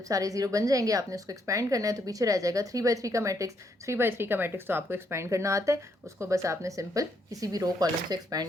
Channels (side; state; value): both; normal; correlation 0.74